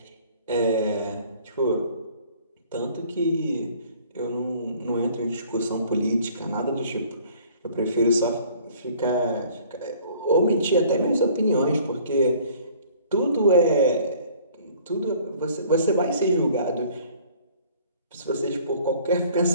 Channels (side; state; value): both; inverted; correlation -0.54